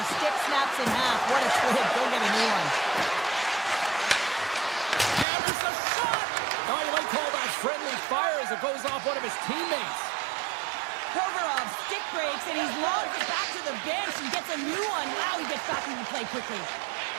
stick snaps in half. What a twig. Go get a new one. And there's a shot. Oh, you might call that friendly fire as it goes off one of his teammates. Provorov stick breaks, and he's lobbed it back to the bench and gets a new one. Wow, he gets back into play quickly.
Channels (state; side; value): drops out; left; at 5.2 s